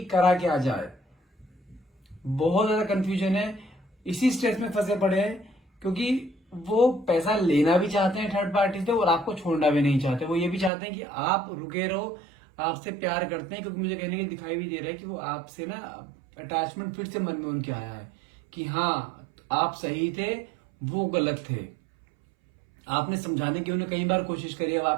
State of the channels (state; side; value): drops out; left; at 10.7 s